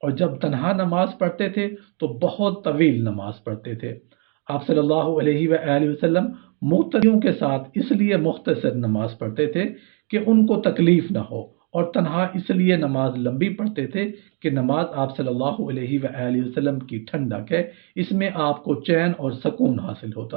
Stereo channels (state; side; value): quieter; left; 39.3 dB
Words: اور جب تنہا نماز پڑھتے تھے تو بہت طویل نماز پڑھتے تھے۔ آپ صلی اللہ علیہ وآلہ وسلم مقتدیوں کے ساتھ اس لیے مختصر نماز پڑھتے تھے کہ ان کو تکلیف نہ ہو، اور تنہا اس لیے نماز لمبی پڑھتے تھے کہ نماز آپ صلی اللہ علیہ وآلہ وسلم کی ٹھنڈک ہے، اس میں آپ کو چین اور سکون حاصل